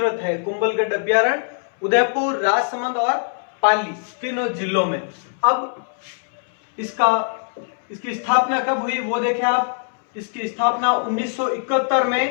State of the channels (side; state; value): right; silent; 65 dB below the other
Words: है कुंभलगढ़ अभ्यारण्य। उदयपुर, राजसमंद और पाली तीनों जिलों में। अब इसकी स्थापना कब हुई वो देखें आप। इसकी स्थापना 1971